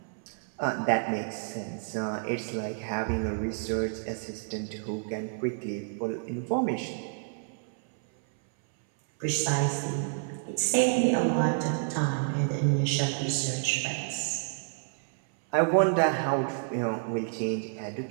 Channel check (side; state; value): left; silent; 58 dB below the other